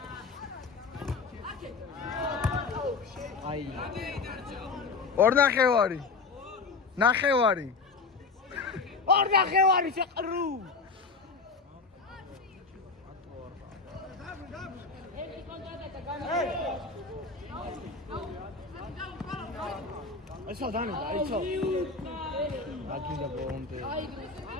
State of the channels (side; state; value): right; quieter; 4.5 dB